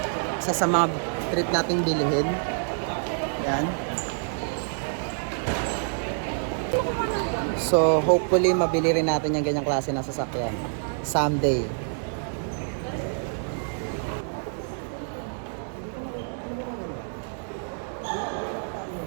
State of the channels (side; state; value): left; silent; 59 dB below the other